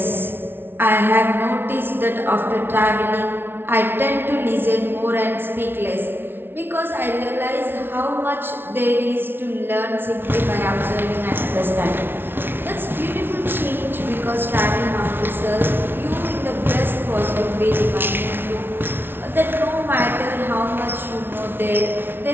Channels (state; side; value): late; left; 0.11 ms